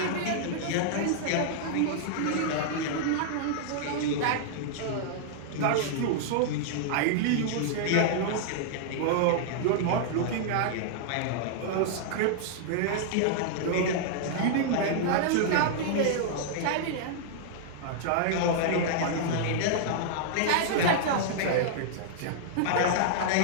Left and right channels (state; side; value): different; both; correlation -0.01